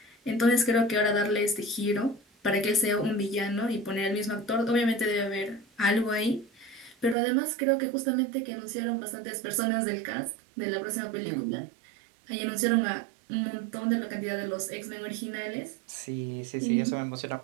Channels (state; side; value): drops out; left; at 7.2 s